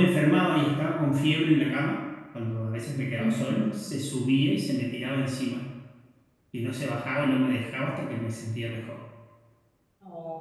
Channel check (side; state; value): both; identical; correlation 1.00